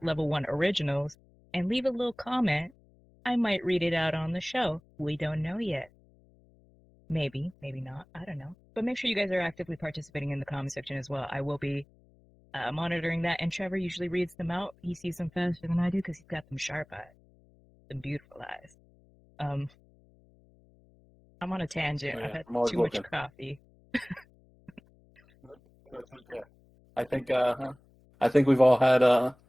Level 1 Originals and leave a little comment. I might read it out on the show. We don't know yet. Maybe not. I don't know. But make sure you guys are actively participating in the comment section as well. I will be monitoring that, and Trevor usually reads them out. He sees them faster than I do because he's got them sharp eyes, them beautiful eyes. I'm on a tangent. Yeah, I've had too much coffee. I think we've all had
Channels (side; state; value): left; noise; hum, 29 dB below the sound